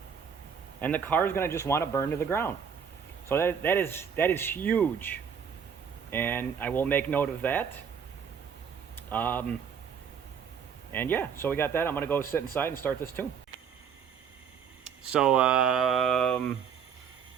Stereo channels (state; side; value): quieter; left; 7.2 dB